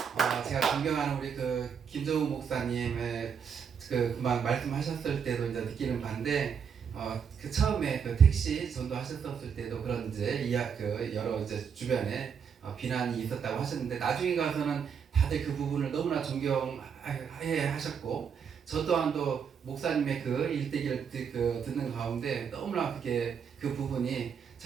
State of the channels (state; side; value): quieter; left; 7.0 dB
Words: 제가 존경하는 우리 김정우 목사님의 그만 말씀하셨을 때도 이제 느끼는 바인데 처음에 택시 전도하셨을 때도 그런 이제 여러 이제 주변에 비난이 있었다고 하셨는데 나중에 가서는 다들 그 부분을 너무나 존경해 하셨고 저 또한도 목사님의 일대기를 듣는 가운데 너무나 그 부분이